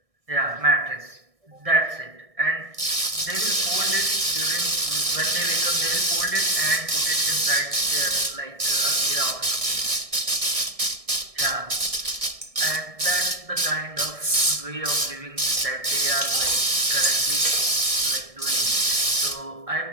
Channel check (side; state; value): left; late; 1.6 ms